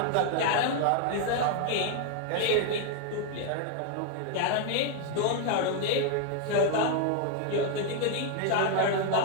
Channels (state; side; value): different; both; correlation 0.00